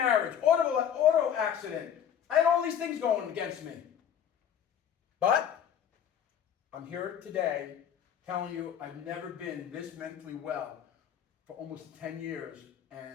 auto accident. I had all these things going against me. But I'm here today telling you I've never been this mentally well for almost 10 years,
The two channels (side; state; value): right; quieter; 9.0 dB